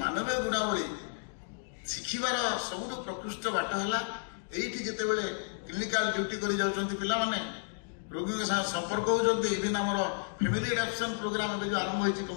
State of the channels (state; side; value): silent; right; digital silence